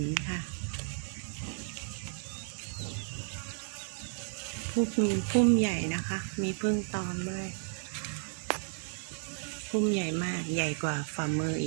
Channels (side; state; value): left; silent; 56 dB below the other